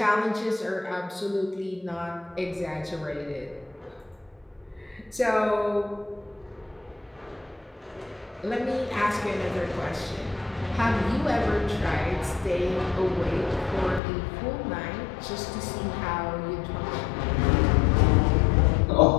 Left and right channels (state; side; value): drops out; right; at 14.0 s